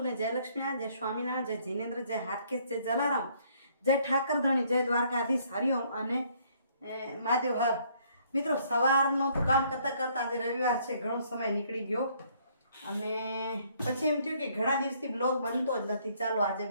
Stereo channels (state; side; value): inverted; both; correlation -0.65